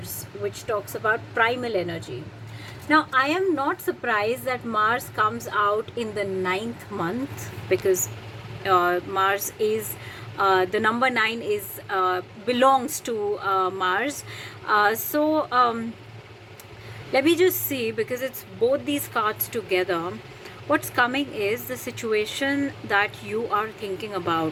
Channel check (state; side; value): identical; both; correlation 1.00